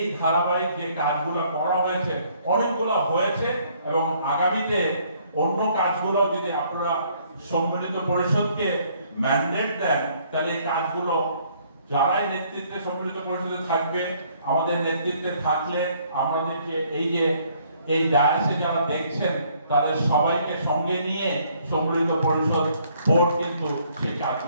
ধারাবাহিক যে কাজগুলো করা হয়েছে, অনেকগুলো হয়েছে, এবং আগামীতে অন্য কাজগুলো যদি আপনারা সম্মিলিত পরিষদকে ম্যান্ডেট দেন, তাহলে এই কাজগুলো যারাই নেতৃত্বে সম্মিলিত পরিষদে থাকবে, আমাদের নেতৃত্বে থাকলে আমাদেরকে এই ডায়াসে যারা দেখছেন তাদের সবাইকে সঙ্গে নিয়ে সম্মিলিত পরিষদ বোর্ড কিন্তু সেই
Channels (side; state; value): both; inverted; correlation -0.64